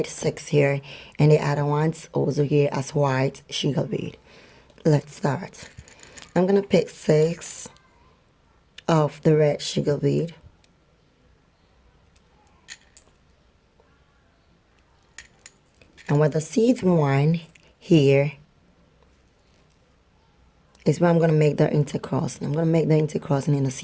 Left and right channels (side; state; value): both; identical; correlation 1.00